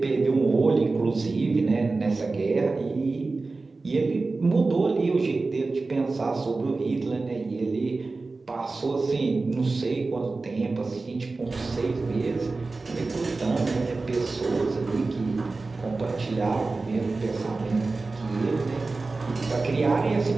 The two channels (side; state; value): left; quieter; 3.6 dB